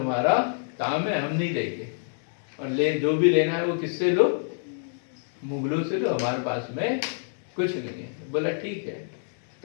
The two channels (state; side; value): silent; right; digital silence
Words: काम है, हम नहीं देंगे, और ले जो भी लेना है वो किससे लो? मुगलों से लो, हमारे पास में कुछ नहीं है। बोला ठीक है,